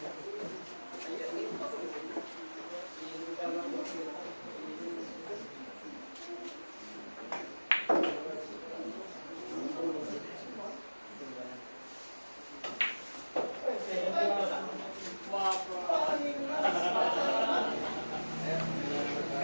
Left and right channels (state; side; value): inverted; both; correlation -1.00